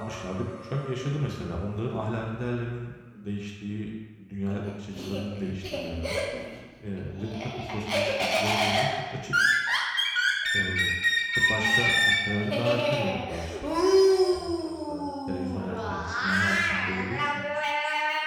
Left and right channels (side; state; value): both; identical; correlation 1.00